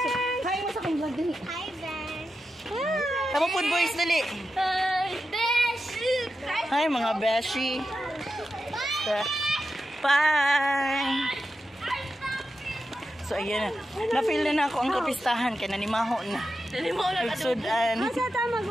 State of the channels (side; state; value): both; normal; correlation 0.90